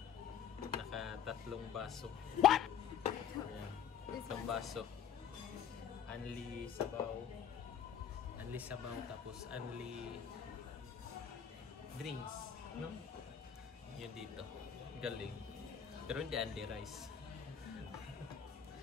Naka-3 baso. What? Ayan. 3 baso. Only sabaw. Only sabaw tapos only drinks. No? Yun dito. Galing. Pero hindi only rice.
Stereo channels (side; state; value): right; quieter; 8.6 dB